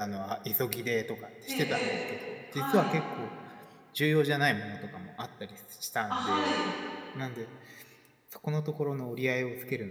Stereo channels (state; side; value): identical; both; correlation 1.00